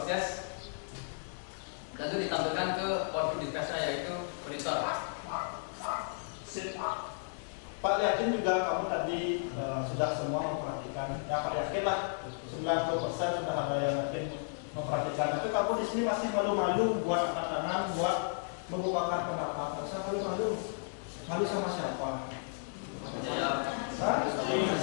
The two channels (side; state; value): right; silent; digital silence